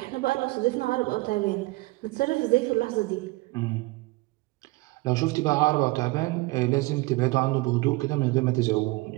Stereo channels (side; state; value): left; quieter; 22.4 dB